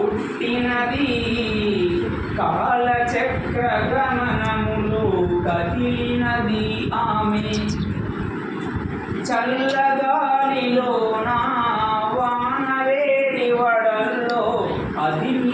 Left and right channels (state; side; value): identical; both; correlation 1.00